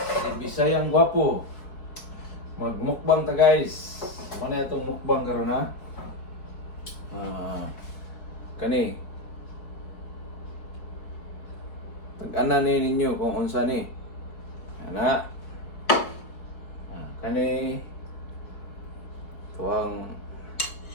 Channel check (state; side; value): late; right; 4.7 ms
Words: Bisayang Gwapo. Magmukbang ta guys. Mana itong mukbang karon ha? Kani. Tag-ana ni ninyo kung unsa ni. Ana. Kani. Tuwang